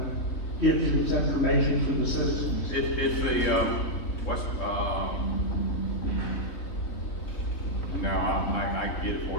gives its information to the citizens? It's the West. No, I can get it for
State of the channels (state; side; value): late; right; 3.4 ms